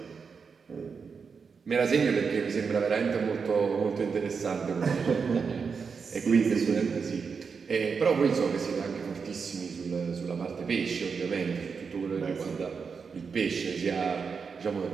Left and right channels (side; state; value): left; quieter; 5.6 dB